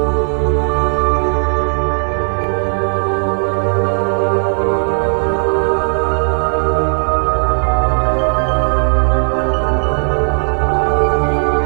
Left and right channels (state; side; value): silent; left; 67 dB below the other